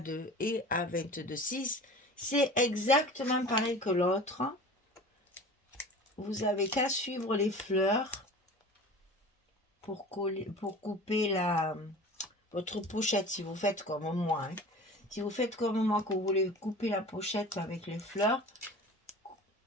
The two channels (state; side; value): normal; both; correlation 0.39